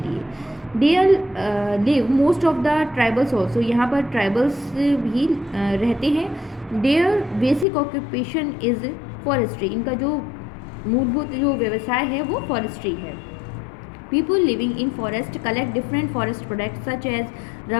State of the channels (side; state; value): right; drops out; at 7.7 s